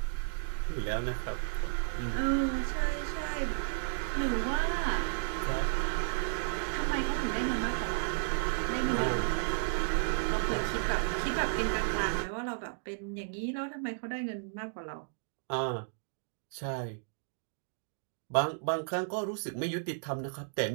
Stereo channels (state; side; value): silent; left; digital silence